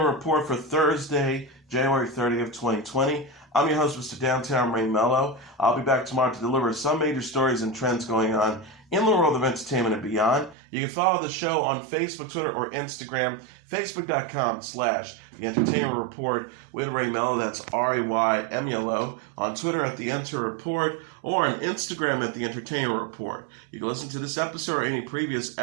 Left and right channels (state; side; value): drops out; left; at 10.6 s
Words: report for Thursday, January 30th, 2020. I'm your host, Mr. Downtown Ray Melo. I'll be back tomorrow to deliver some major stories and trends going on in the world of entertainment and beyond. You can follow the show on Facebook, Twitter, or Instagram, facebook.com/The Entertainment Report with Ray Melo. That's RAYMELO. On Twitter at The Enter Report, or on Instagram at The Entertainment Report. You can listen to this episode or any previous